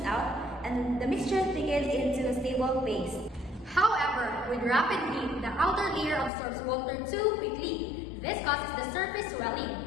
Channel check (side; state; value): right; drops out; at 6.3 s